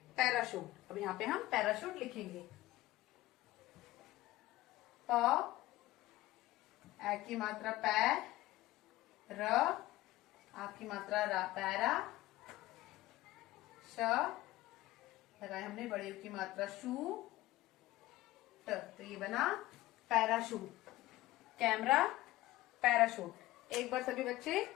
पैराशूट। अब यहाँ पे हम पैराशूट लिखेंगे। प, ए की मात्रा पै, र, आ की मात्रा रा, पैरा, श, लगाए हमने बड़े की मात्रा शू, ट, तो ये बना पैराशूट। Camera, parachute. एक बार सभी बच्चे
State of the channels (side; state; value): right; quieter; 17.4 dB